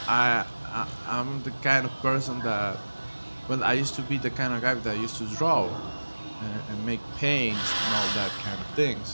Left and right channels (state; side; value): inverted; both; correlation -1.00